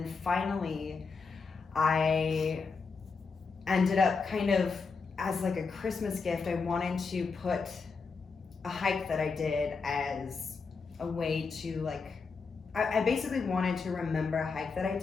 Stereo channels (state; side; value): quieter; right; 4.8 dB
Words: finally I ended up kind of as like a Christmas gift, I wanted to put a hike that I did as a way to like, I basically wanted to remember a hike that I